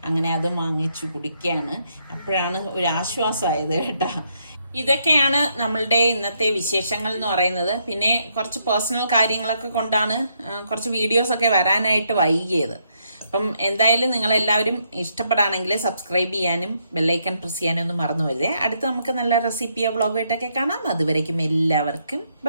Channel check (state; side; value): inverted; both; correlation -0.75